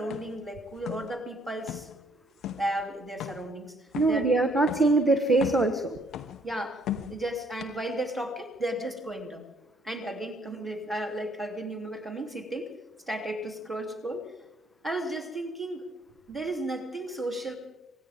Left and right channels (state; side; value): normal; both; correlation 0.65